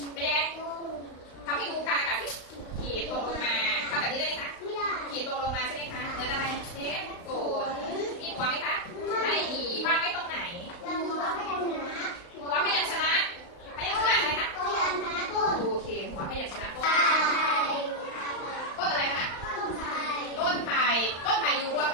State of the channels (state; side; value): late; right; 35 ms